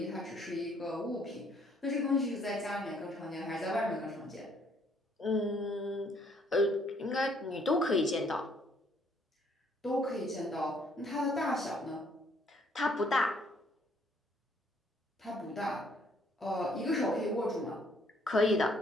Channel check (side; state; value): both; normal; correlation 0.65